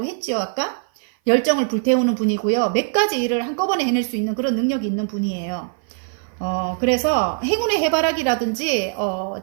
했지요. 아까 열정을 불태우는 분이고요. 몇 가지 일을 한꺼번에 해낼 수 있는 그런 능력이 있는 분이에요. 그래서 행운의 해바라기라든지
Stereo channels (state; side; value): silent; left; 56 dB below the other